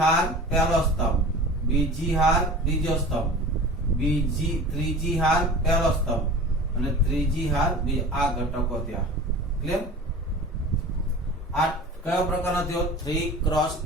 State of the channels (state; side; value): normal; both; correlation 0.38